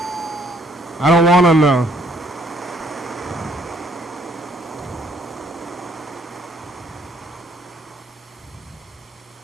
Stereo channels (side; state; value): both; normal; correlation 0.64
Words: I don't want to know.